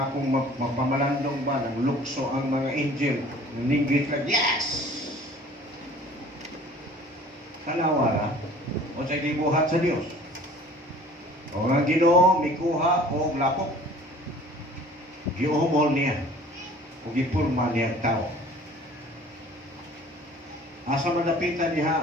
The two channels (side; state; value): both; normal; correlation 0.49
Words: akong magpamalandong ba ng lukso ang mga angel. Ninggit lang, yes! Kanawara, o sa gibuhat sa Diyos. O ang Ginoo, mikuha o lapok. Giumol niya. O gipurma niya ang tao. Asa madapitan